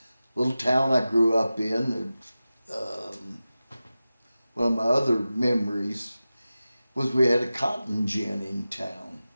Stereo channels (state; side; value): inverted; both; correlation -0.95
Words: little town I grew up in, one of my other memories was we had a cotton gin in town.